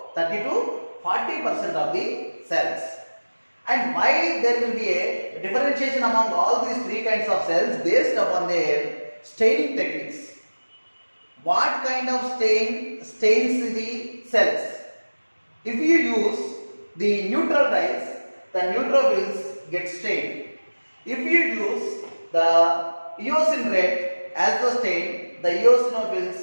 30 to 40% of the cells. And why there will be a differentiation among all these three kinds of cells based upon their staining techniques. What kind of stain stains the cells? If you use the neutral dyes, the neutrophils get stained. If you use the eosin red as the stain, the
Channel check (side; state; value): both; inverted; correlation -1.00